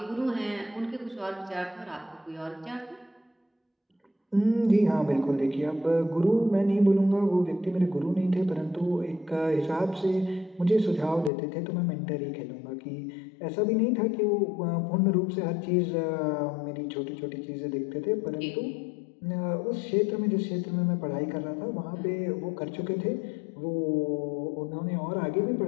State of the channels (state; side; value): drops out; right; at 11.3 s